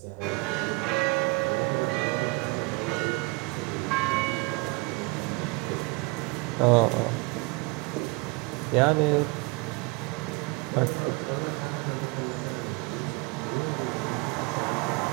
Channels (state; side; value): quieter; left; 28.1 dB